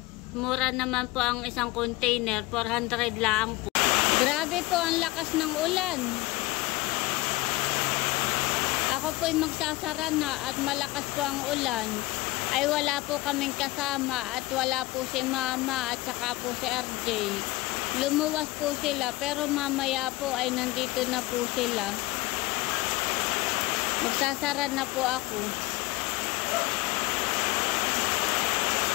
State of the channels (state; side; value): quieter; right; 20.0 dB